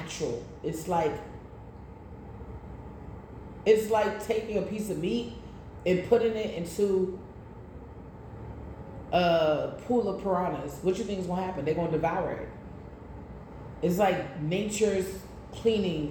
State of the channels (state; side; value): identical; both; correlation 1.00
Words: It's like taking a piece of meat and putting it into a pool of piranhas. What you think is going to happen? They're going to devour it. It's like nature's